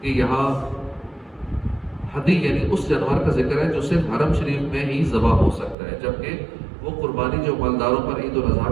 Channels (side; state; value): left; drops out; at 5.8 s